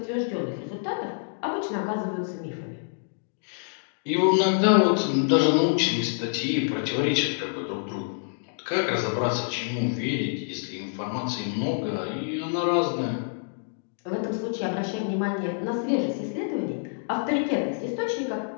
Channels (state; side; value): silent; right; digital silence